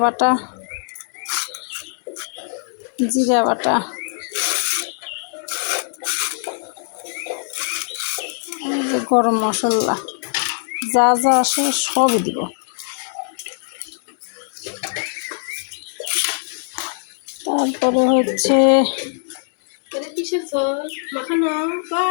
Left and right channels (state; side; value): silent; right; 65 dB below the other